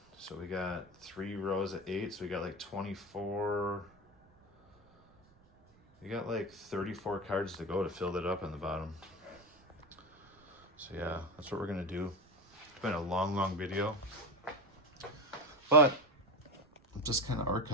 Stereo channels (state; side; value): noise; right; rumble, 29 dB below the sound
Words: So we got 3 rows of 8. So we got like 24. We got like 34 cards to go to fill that up on the bottom. So yeah, that's what we're gonna do. It's been a long video, but I'm just kind of